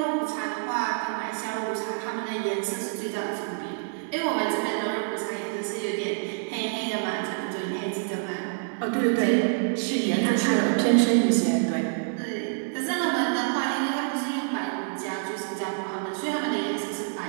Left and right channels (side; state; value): left; silent; digital silence